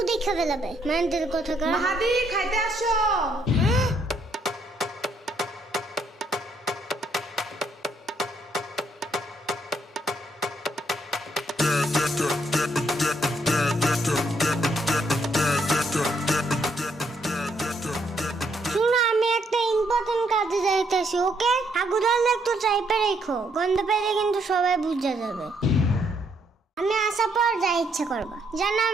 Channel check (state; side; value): normal; both; correlation 0.72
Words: দেখে ফেলাবে, মেন্টাল কথা কর। মাহাদি খাইতে আসো। শুনো, আমি একটা ইম্পর্টেন্ট কাজে যাইতেছি, ওকে? আগুদাল একটু চাইপে রেখো, গন্ধ পেলে কিন্তু সবাই বুঝে যাবে। আমি আসার পর যা ইচ্ছা করবা, যেন